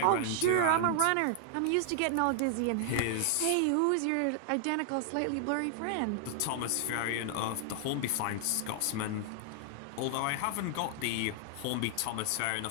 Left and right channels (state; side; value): different; both; correlation 0.00